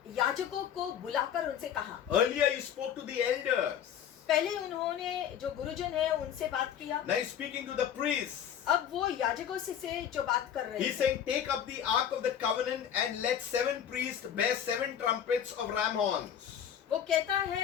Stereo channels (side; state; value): right; quieter; 9.2 dB